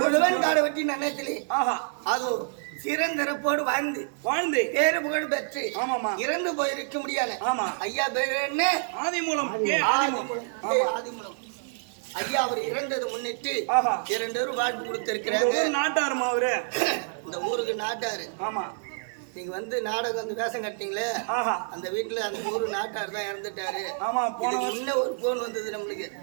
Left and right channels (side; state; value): left; silent; digital silence